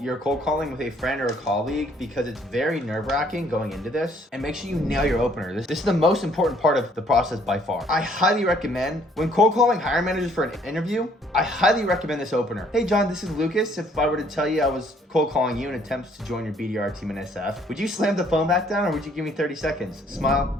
your cold calling with a friend or a colleague because it's very nerve-wracking going into this, and make sure you nail your opener. This is the most important part of the process by far. I highly recommend, when cold calling hiring managers for an interview, I highly recommend this opener. Hey John, this is Lucas. If I were to tell you I was cold calling you in attempts to join your BDR team in SF, would you slam the phone back down or would you give me 30 seconds?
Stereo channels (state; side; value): normal; both; correlation 0.63